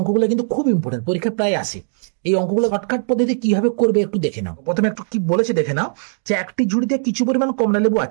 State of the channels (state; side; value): silent; left; 66 dB below the other